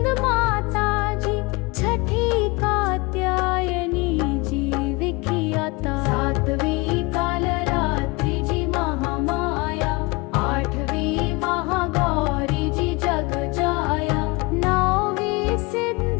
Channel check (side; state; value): right; quieter; 25.6 dB